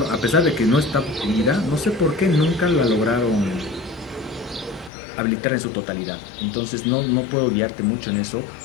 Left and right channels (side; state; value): right; drops out; at 4.9 s